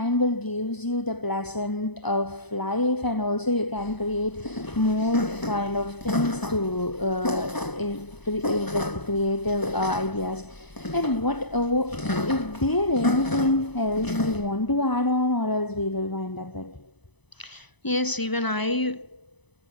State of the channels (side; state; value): right; late; 1.0 ms